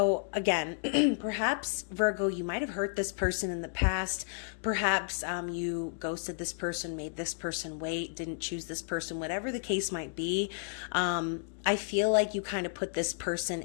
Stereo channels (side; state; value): right; silent; digital silence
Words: again, perhaps Virgo, you might have hurt this person in the past. Perhaps you ghosted this person, made this person wait, didn't choose this person, whatever the case might be. I feel like you kind of put this person